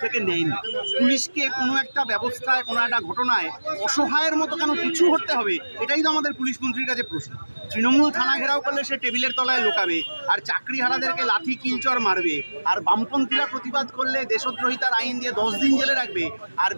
থেকে নেয়নি? পুলিশকে কোনো একটা ব্যবস্থায়, কোনো একটা ঘটনায় অসহায়ের মতো কেন পিছু হটতে হবে? এটাই তো আমাদের পুলিশ মন্ত্রীর কাছে প্রশ্ন। তৃণমূল থানা ঘেরাও করলে সে টেবিলের তলায় লুকাবে, আর চাকরিহারাদেরকে লাথি কিলচর মারবে, আর বামপন্থীরা প্রতিবাদ করলে দেশদ্রোহিতার আইন দিয়ে 10 দিন জেলে রাখবে, আর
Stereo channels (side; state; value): both; inverted; correlation -1.00